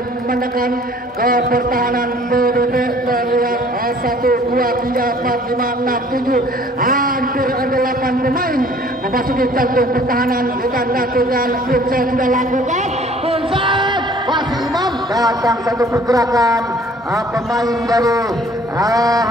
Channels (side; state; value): both; normal; correlation 0.54